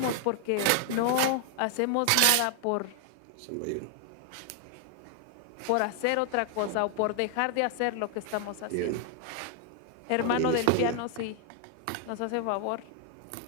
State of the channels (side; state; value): both; different; correlation 0.00